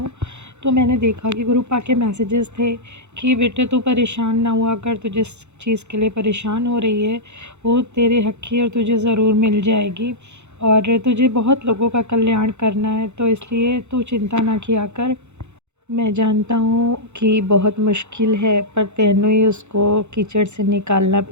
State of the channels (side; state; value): left; late; 0.82 ms